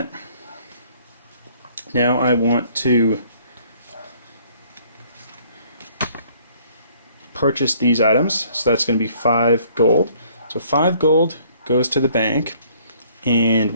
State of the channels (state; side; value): inverted; both; correlation -0.60